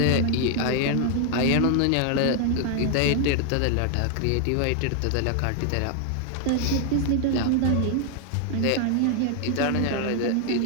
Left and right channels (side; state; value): both; different; correlation 0.00